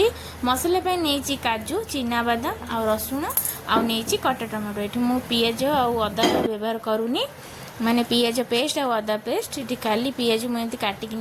मसला पे नहीं काजू चिना बादाम आ रसुण आ नहीं कटा टमाटो। ये मु पियाज आउ अदा व्यवहार करूनी माने पियाज पेस्ट आ अदा पेस्ट। ये खाली पियाज मुझे काटिक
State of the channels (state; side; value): identical; both; correlation 1.00